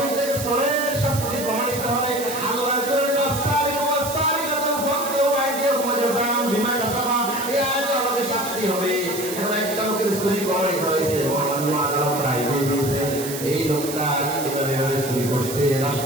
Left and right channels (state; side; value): noise; right; hiss, 8 dB below the sound